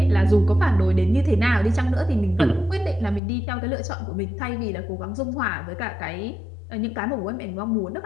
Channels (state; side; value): drops out; right; at 3.2 s